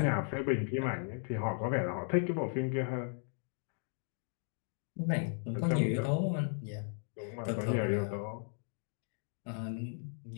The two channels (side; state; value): right; silent; 54 dB below the other